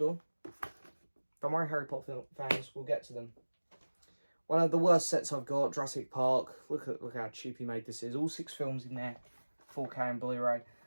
Don't worry, Harry Potter fans, we'll get to them. One of the worst sets I've got, Jurassic Park. Look how cheap he made this is. All 6 films in there, 4K and Blu Ray.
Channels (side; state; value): both; inverted; correlation -1.00